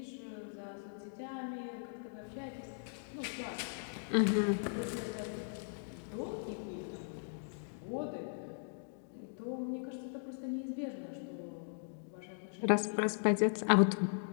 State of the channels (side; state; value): right; silent; digital silence